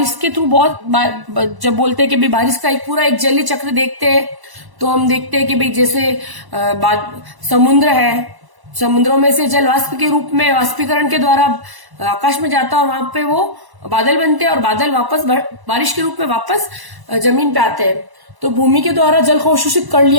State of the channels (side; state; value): left; late; 1.0 ms